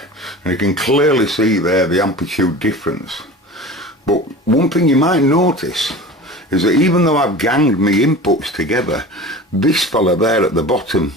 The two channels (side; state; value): both; normal; correlation 0.36